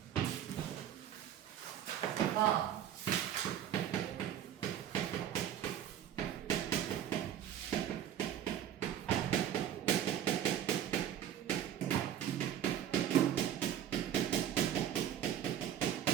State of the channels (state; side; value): quieter; left; 10.3 dB